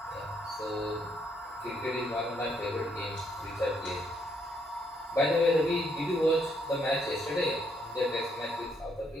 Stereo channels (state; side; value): normal; both; correlation 0.72